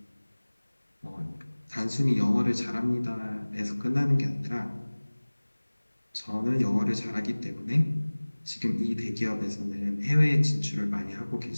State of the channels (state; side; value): inverted; both; correlation -1.00